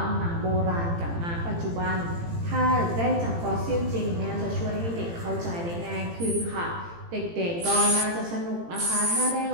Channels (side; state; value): left; late; 18 ms